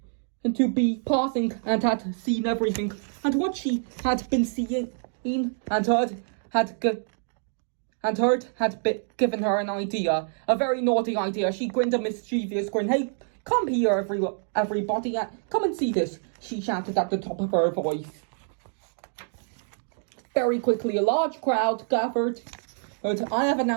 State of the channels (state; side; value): silent; left; digital silence